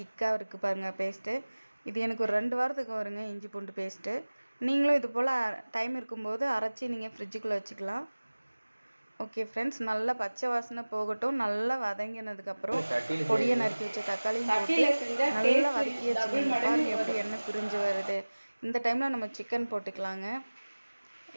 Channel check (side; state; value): both; inverted; correlation -1.00